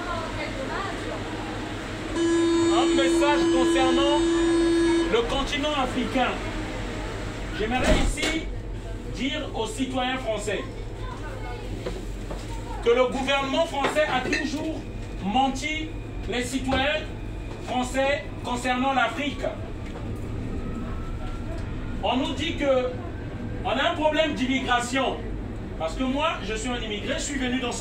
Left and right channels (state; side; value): identical; both; correlation 1.00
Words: Un message concernant le continent africain. J'aimerais ici dire aux citoyens français que le gouvernement français a toujours menti les citoyens français concernant l'Afrique. On nous dit que on a un problème d'immigration. Parce que moi, je suis un immigré, je suis venu dans